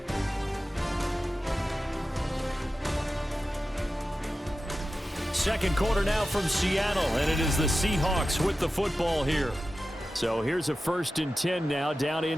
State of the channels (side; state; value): both; normal; correlation 0.93